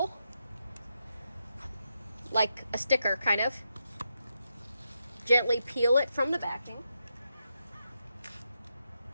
like a sticker, kind of. Gently peel it from the backing.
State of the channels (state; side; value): inverted; both; correlation -0.84